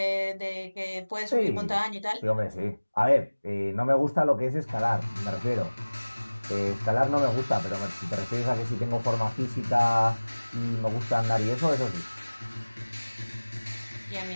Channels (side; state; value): both; inverted; correlation -1.00